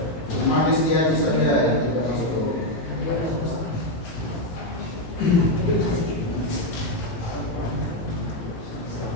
Cuma Rizky Haji saja ya.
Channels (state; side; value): late; right; 18 ms